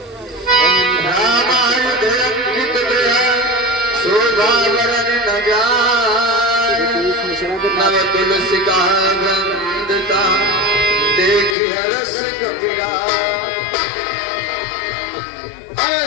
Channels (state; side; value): drops out; right; at 11.6 s